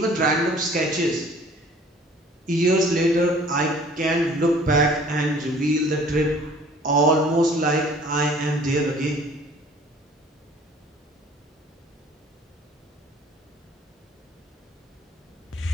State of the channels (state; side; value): normal; both; correlation 0.52